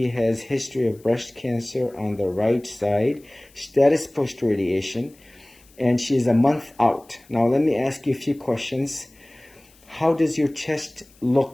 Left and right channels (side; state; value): left; noise; hiss, 29 dB below the sound